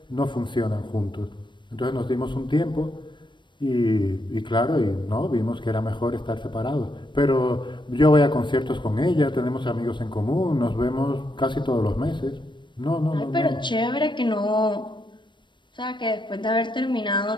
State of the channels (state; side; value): late; right; 0.22 ms